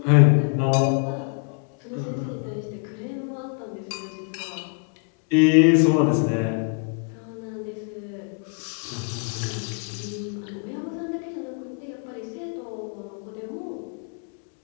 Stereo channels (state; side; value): quieter; right; 38.7 dB